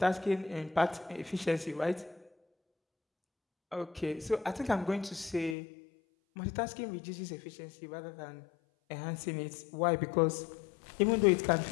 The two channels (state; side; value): drops out; right; at 5.6 s